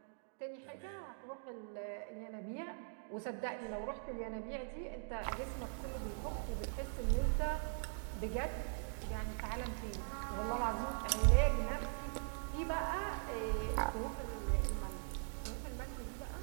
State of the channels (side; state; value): left; silent; digital silence